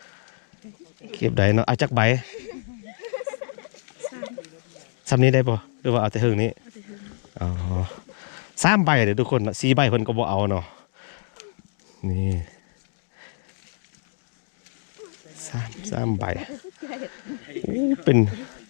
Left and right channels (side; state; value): right; silent; digital silence